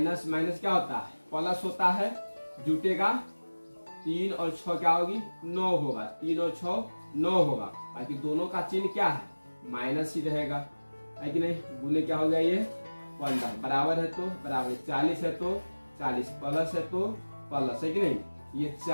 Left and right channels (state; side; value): inverted; both; correlation -1.00